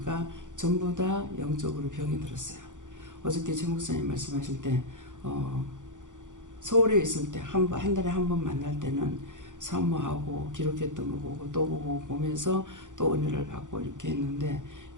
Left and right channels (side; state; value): left; late; 0.86 ms